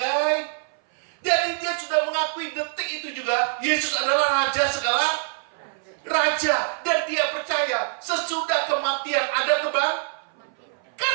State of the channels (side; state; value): left; silent; 59 dB below the other